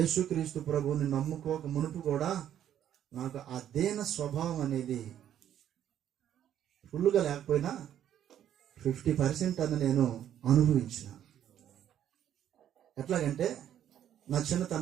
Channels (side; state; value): left; quieter; 10.6 dB